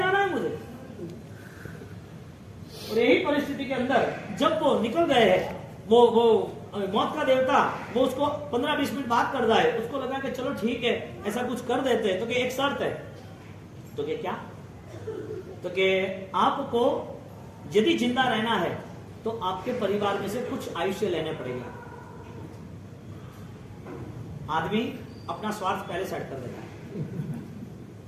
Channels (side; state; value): both; identical; correlation 1.00